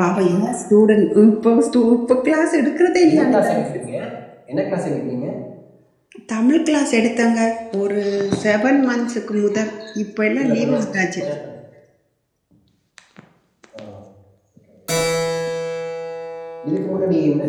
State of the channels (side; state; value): both; identical; correlation 1.00